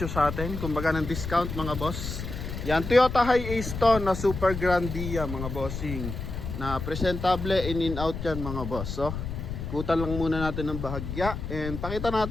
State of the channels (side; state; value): left; noise; rumble, 6 dB below the sound